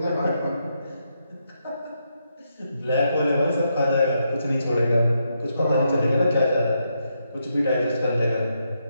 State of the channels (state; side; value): inverted; both; correlation -0.81